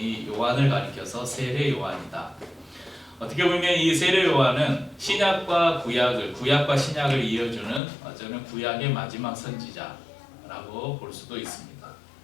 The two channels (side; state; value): right; drops out; at 7.8 s